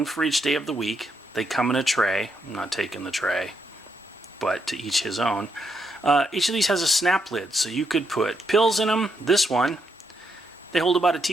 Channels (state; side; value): normal; both; correlation 0.79